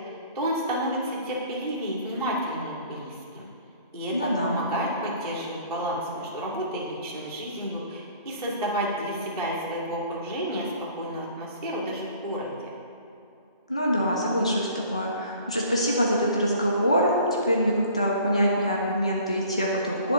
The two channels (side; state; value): both; inverted; correlation -0.51